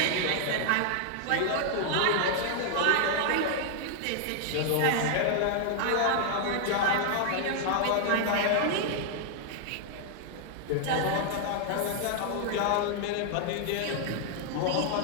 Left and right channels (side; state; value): both; different; correlation 0.00